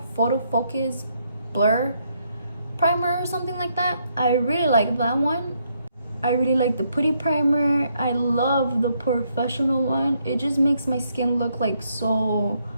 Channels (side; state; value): both; inverted; correlation -0.74